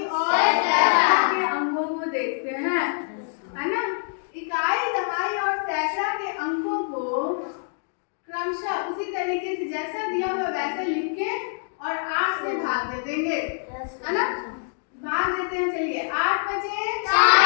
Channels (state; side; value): silent; right; digital silence